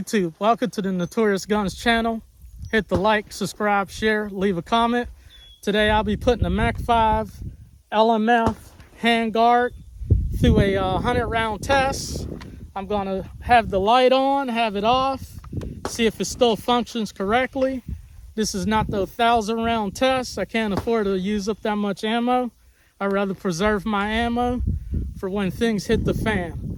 welcome to the Notorious Guns channel. Hit the like, subscribe, share, leave a comment. Today I'll be putting a Mac5 LMF handguard through a 100-round test. I'm gonna have the light on, have it off, see if it still functions correctly. This is not the 1,000-round test. I can't afford to use up that much ammo. I'd rather preserve my ammo for when things hit the fan.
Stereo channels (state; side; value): identical; both; correlation 1.00